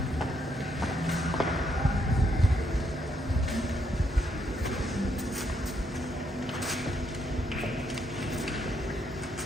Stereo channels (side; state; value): both; normal; correlation 0.75